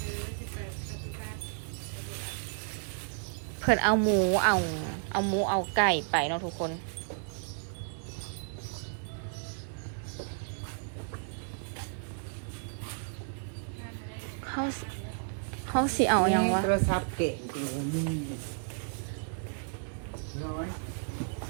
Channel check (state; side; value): silent; left; digital silence